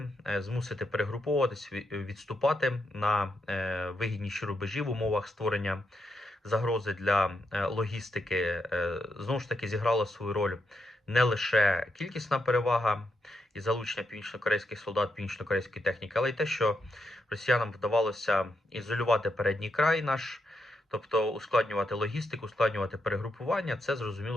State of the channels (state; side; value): normal; both; correlation 0.82